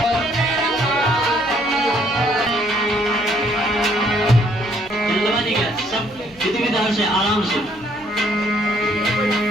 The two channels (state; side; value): noise; left; hum, 24 dB below the sound